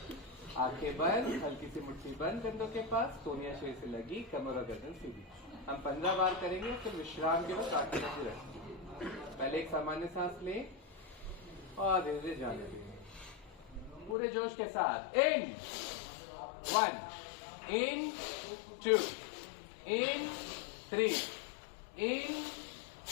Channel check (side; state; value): right; drops out; at 14.2 s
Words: आंखें बंद, हल्की सी मुट्ठी बंद कंधों के पास, सोनिया शेर से लगी, कमर और गर्दन सीधी। हम 15 बार करेंगे, फिर विश्राम के वक्त आंखें बंद रखेंगे। पहले एक सामान्य सांस ले और धीरे धीरे जाने देंगे पूरे जोश के साथ। इन 1, इन 2, इन 3, इन